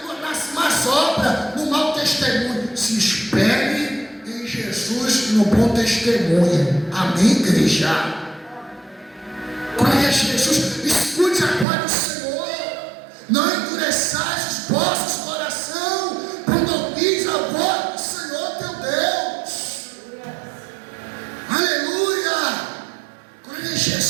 más obras, no mau testemunho. Se espelhe em Jesus no bom testemunho. Amém, igreja? Glória a Jesus. Escute a voz do Senhor. Não endureçais os vossos corações quando ouvis a voz do Senhor teu Deus. Aleluia. Glória a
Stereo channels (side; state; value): left; drops out; at 11.7 s